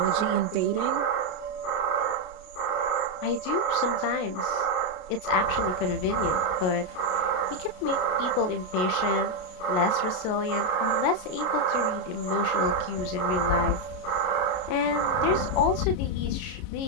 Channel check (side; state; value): right; late; 33 ms